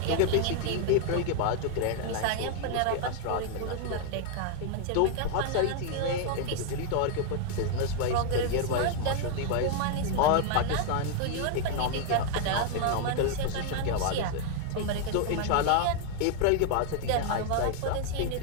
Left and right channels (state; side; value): different; both; correlation 0.00